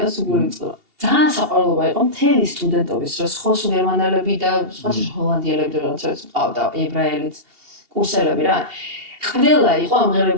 და სულ იწყება ძალიან საყვარლობა იყო მთელი სტუდენტობის რომ სხვა გერმანელები და სხვა ჰოლანდიელები რაღაცა ყავდა ებრაელიც კურსელები რა ყველა იყო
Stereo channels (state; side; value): late; left; 2.8 ms